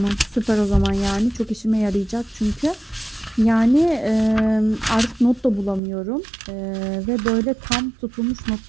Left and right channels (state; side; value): drops out; left; at 5.8 s